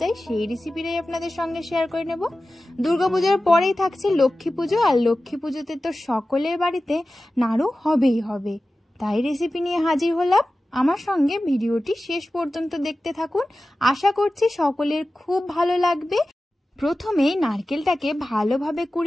যায় সেই রেসিপিটাই আপনাদের সঙ্গে শেয়ার করে নেব। দুর্গাপূজার পরেই থাকছে লক্ষ্মী পুজো, আর লক্ষ্মী পুজোতে তো সকলের বাড়িতে নাড়ু হবেই হবে। তাই রেসিপি নিয়ে হাজির হলাম। আমার সঙ্গে ভিডিওটি শেষ পর্যন্ত দেখতে থাকুন, আশা করছি সকলের খুব ভালো লাগবে। প্রথমে নারকেলটাকে ভালোভাবে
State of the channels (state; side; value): normal; both; correlation 0.95